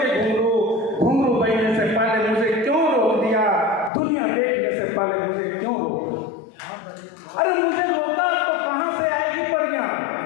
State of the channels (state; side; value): drops out; right; at 3.9 s